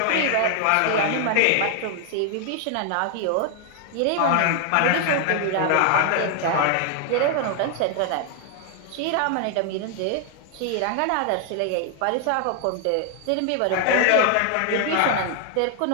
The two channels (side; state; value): both; different; correlation 0.00